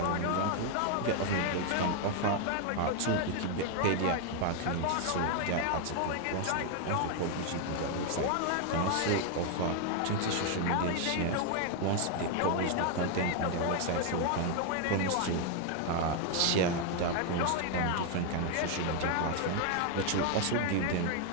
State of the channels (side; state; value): both; different; correlation 0.01